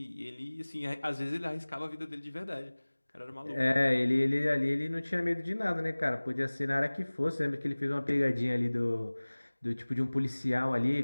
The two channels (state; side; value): inverted; both; correlation -1.00